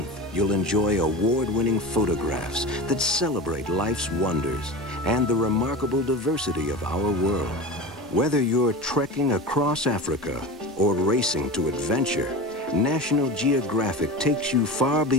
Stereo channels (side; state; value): both; normal; correlation 0.29